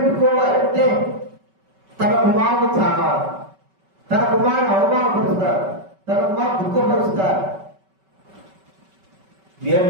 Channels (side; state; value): left; late; 5.2 ms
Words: తన కుమారుడు చావాలి, తన కుమారుని అవమానపరుస్తారు, తన కుమారు దుఃఖపరుస్తారు.